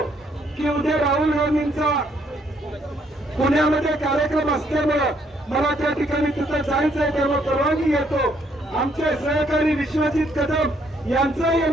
की उद्या राहुल गांधींचा पुण्यामध्ये कार्यक्रम असल्यामुळे मला त्या ठिकाणी तिथं जायचं आहे, त्यामुळे परवानगी घेतो. आमचे सहकारी विश्वजित कदम यांचाही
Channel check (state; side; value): normal; both; correlation 0.69